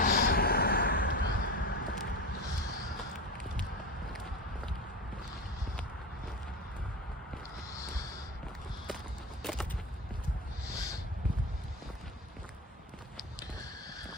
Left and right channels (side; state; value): both; normal; correlation 0.23